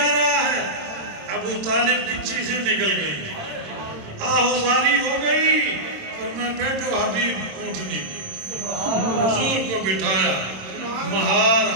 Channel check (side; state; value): left; late; 26 ms